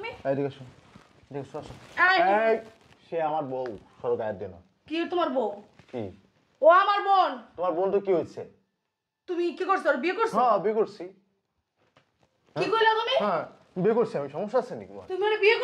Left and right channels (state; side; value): identical; both; correlation 1.00